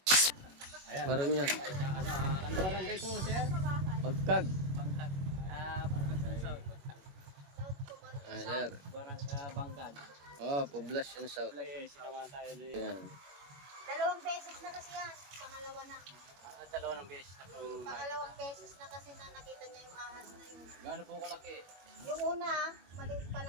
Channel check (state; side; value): late; left; 21 ms